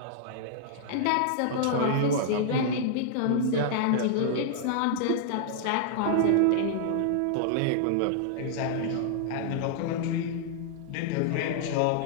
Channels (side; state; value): both; different; correlation -0.01